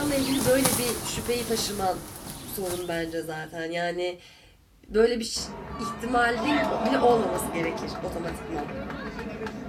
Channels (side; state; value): both; identical; correlation 1.00